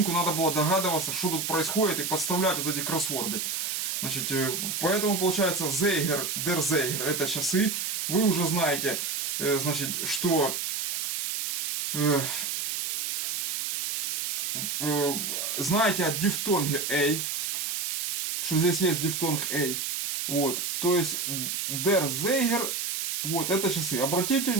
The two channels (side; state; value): right; noise; hiss, 1 dB below the sound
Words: надо было догадываться, что тут происходит, и подставлять вот эти кроссворды. Значит, поэтому получается Zeiger, der Zeiger, это часы. Вы уже знаете, значит, что знаете о дифтонге A, что здесь есть дифтонг A. Вот, то есть der Zeiger, вот это часы. Обратите